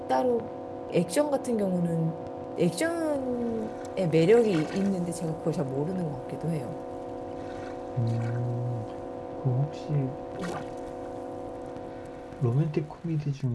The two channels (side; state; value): both; identical; correlation 1.00